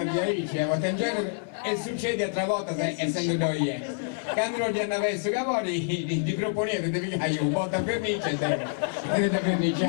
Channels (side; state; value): right; silent; 60 dB below the other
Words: di Alice, e succede altra volta, essendo noi. Quando non gli andava su cavoli, ti proponete di pigliare un botto a vernice e da